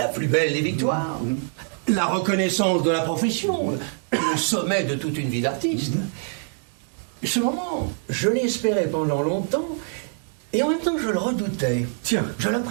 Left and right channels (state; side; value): silent; left; 56 dB below the other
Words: plus belle des victoires, la reconnaissance de la profession, le sommet de toute une vie d'artiste. Ce moment, je l'espérais pendant longtemps, et en même temps je le redoutais. Tiens. Je